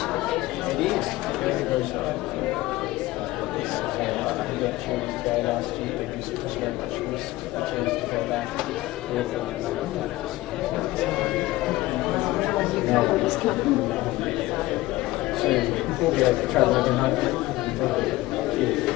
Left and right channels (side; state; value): right; quieter; 18.3 dB